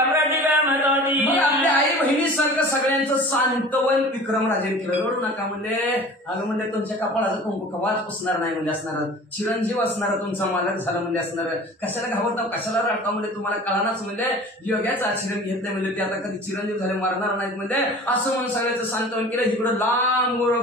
आपल्या आई बहिणीसारखं सगळ्यांचं सांत्वन विक्रमराजेने केलं. रडू नका म्हणजे अगं म्हणजे तुमच्या कपाळाचं कुंकू कवाच पुसणार नाही म्हणजे असणार. चिरंजीव असणार तुमचा मालक झाला म्हणजे असणार. कशाला घाबरता कशाला रडता म्हणजे तुम्हाला कळानाच म्हणजे योग्याचं आचरण घेतलं म्हणजे ते आता कधी चिरंजीव झाले मारणार नाहीत म्हणजे असं म्हणून सगळ्याचं सांत्वन केलं. इकडं लांब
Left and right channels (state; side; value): normal; both; correlation 0.42